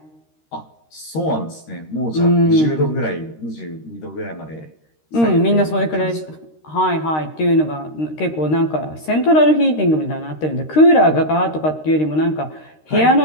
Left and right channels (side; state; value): right; late; 13 ms